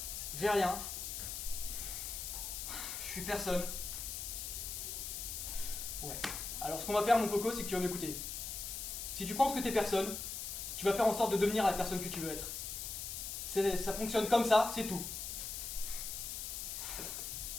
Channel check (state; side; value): noise; left; hiss, 5 dB below the sound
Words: J'ai rien. Je suis personne. Ouais. Alors ce qu'on va faire, mon coco, c'est que tu vas m'écouter. Si tu penses que t'es personne, tu vas faire en sorte de devenir la personne que tu veux être. Ça fonctionne comme ça, c'est tout.